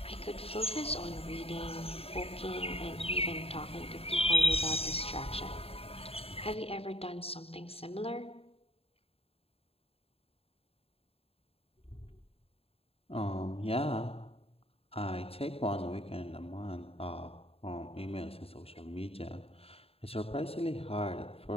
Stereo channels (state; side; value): late; right; 0.28 ms